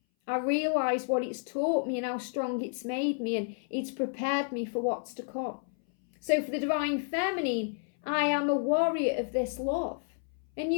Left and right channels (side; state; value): right; silent; 57 dB below the other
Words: I realise what it's taught me and how strong it's made me, and it's prepared me for what's to come. So for the Divine Feminine, I am a warrior of this love. And